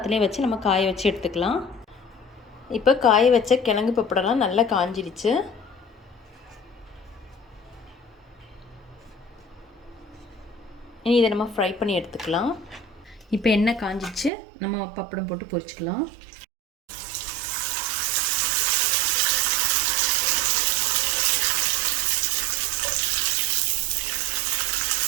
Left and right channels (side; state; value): left; drops out; at 14.3 s